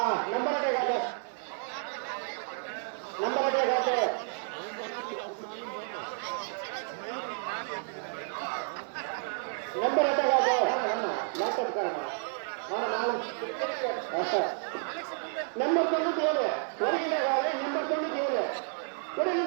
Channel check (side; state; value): left; silent; 57 dB below the other